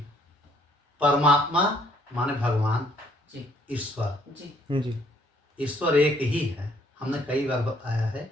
परमात्मा माने भगवान जी ईश्वर जी जी ईश्वर एक ही है। हमने कई बार बताया है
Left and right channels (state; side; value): normal; both; correlation 0.64